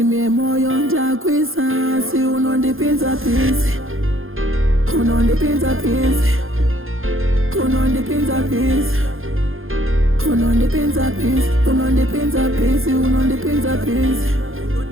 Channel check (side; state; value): left; late; 0.60 ms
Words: memoyo ndakwisa, si unondipinza pisi, unondipinza pisi, unondipinza pisi, unondipinza pisi, unondipinza pisi, unondipinza pisi,